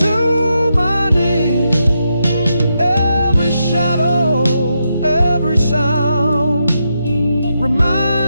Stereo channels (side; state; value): both; inverted; correlation -0.84